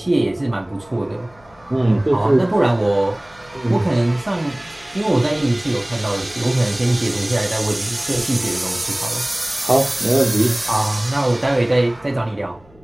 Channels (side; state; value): left; noise; hum, 28 dB below the sound